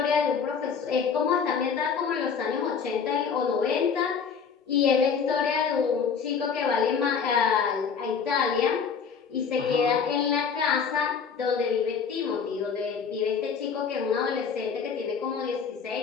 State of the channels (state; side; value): quieter; right; 6.3 dB